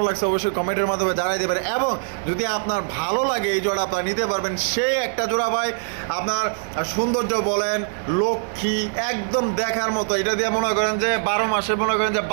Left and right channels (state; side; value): silent; left; digital silence